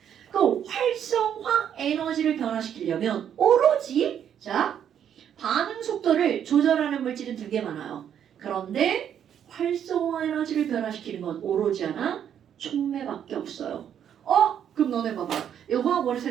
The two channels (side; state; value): left; quieter; 9.2 dB